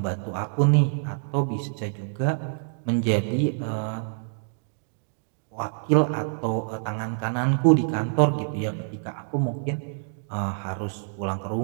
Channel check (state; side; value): silent; left; digital silence